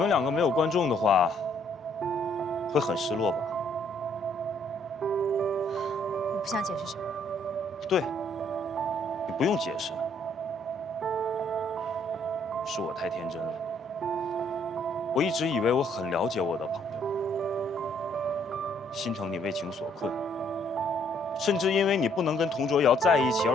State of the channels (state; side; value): normal; both; correlation 0.66